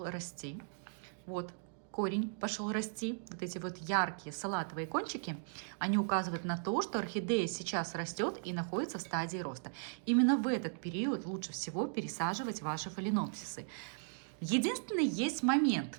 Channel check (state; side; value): silent; left; digital silence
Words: расти. Вот корень пошел расти, вот эти вот яркие салатовые кончики, они указывают на то, что орхидея сейчас растет и находится в стадии роста. Именно в этот период лучше всего пересаживать ваши фаленопсисы. Единственный есть